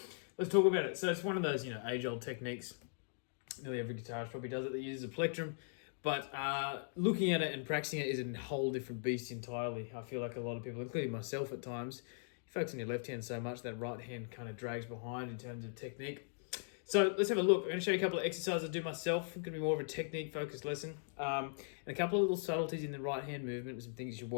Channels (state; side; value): silent; right; digital silence